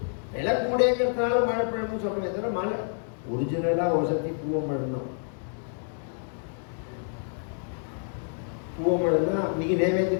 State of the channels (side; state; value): right; silent; digital silence